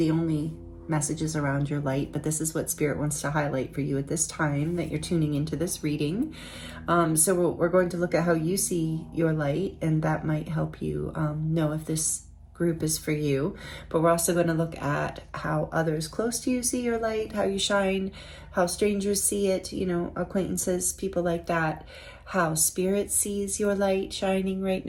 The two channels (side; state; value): both; identical; correlation 1.00